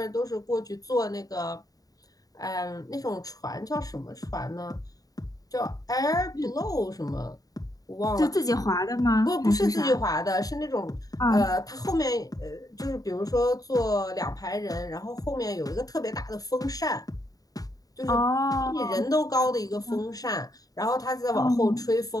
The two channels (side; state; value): right; late; 0.18 ms